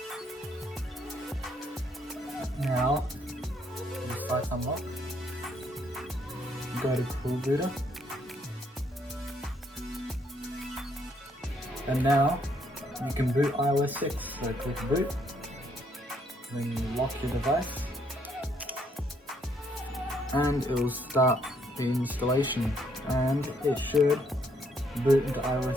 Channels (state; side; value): normal; both; correlation 0.70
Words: Now, the site's unlocked. Go to CoolBooter. And now, you can boot iOS 6. So click boot. Then you lock your device. And it will start the installation. And it should boot into